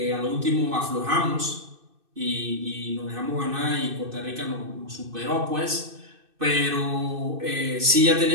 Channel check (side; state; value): left; late; 2.6 ms